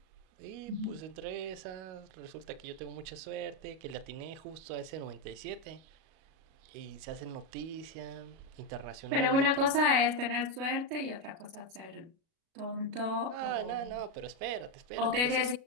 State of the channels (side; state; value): left; late; 37 ms